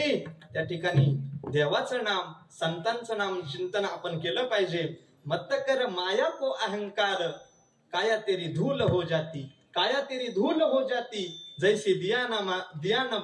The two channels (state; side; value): identical; both; correlation 1.00